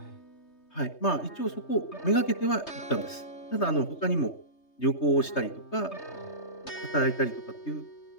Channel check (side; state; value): right; late; 3.3 ms